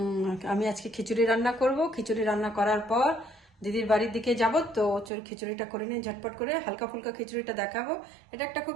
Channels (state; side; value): drops out; left; at 5.1 s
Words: আমি আজকে খিচুড়ি রান্না করব। খিচুড়ি রান্না করার পর দিদির বাড়ির দিকে যাব। তো চল খিচুড়িটা করে নিয়ে ঝটপট করে হালকা ফুলকা খিচুড়িটা দেখাবো। এটা একটা খুব